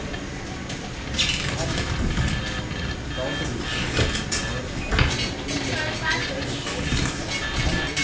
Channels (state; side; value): identical; both; correlation 1.00